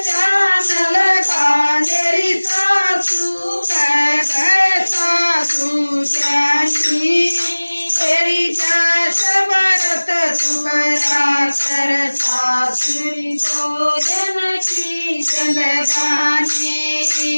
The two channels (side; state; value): both; inverted; correlation -1.00